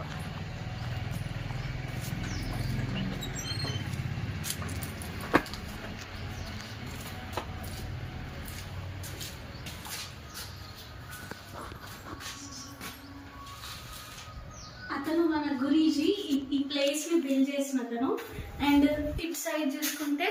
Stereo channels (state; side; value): identical; both; correlation 1.00